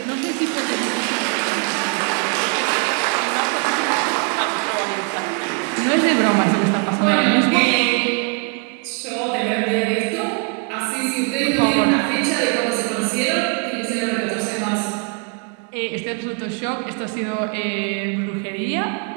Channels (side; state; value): left; quieter; 35.9 dB